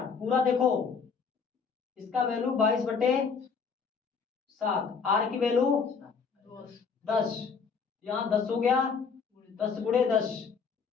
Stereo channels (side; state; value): right; quieter; 5.7 dB